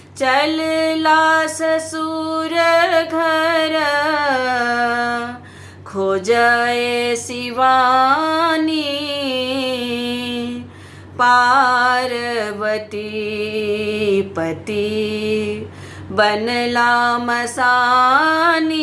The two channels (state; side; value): identical; both; correlation 1.00